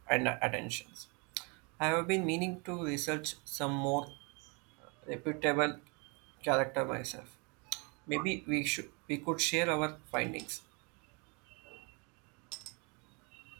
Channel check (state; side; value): quieter; left; 32.2 dB